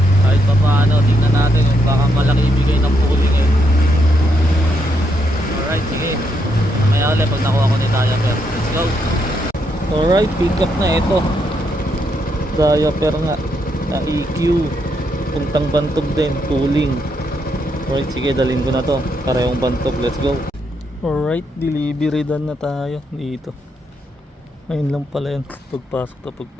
Kahit pa paano, tingnan natin yung baka malaki ibigay ng pooling eh. Alright, sige. Mamaya ulit pag nakuha ko ni diaper. Let's go. Alright, pick up na ito. Diaper nga na EQ. Puntang Bantog din, pooling. Alright, sige, dalhin ko na to. Parehong Bantog, let's go. Alright, delivery done na tayo dito. Ayun lang pala yan.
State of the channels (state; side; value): normal; both; correlation 0.78